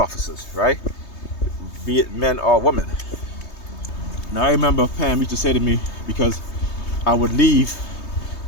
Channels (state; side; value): late; right; 3.2 ms